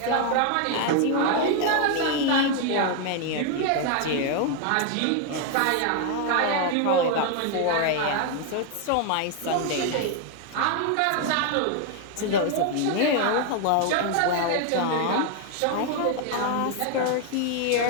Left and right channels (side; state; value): both; different; correlation 0.00